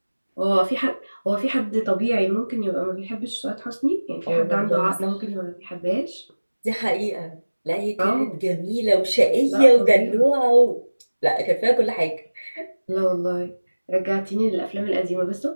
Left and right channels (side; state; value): both; inverted; correlation -1.00